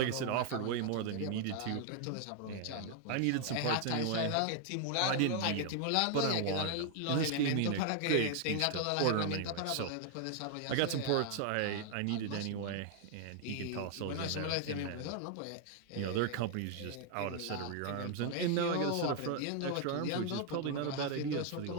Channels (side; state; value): both; different; correlation 0.00